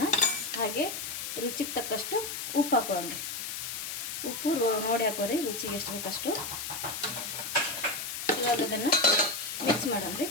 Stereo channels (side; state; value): left; noise; hiss, 5 dB below the sound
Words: ಹಾಗೆ ರುಚಿಗೆ ತಕ್ಕಷ್ಟು ಉಪ್ಪು ಹಾಕೊಳ್ಳೋಣ ರೀ. ಉಪ್ಪು ನೋಡಿ ಹಾಕೋರಿ, ರುಚಿಗೆ ಎಷ್ಟು ಬೇಕಷ್ಟು. ಇವಾಗ ಅದನ್ನು ಮಿಕ್ಸ್ ಮಾಡೋಣ ರೀ.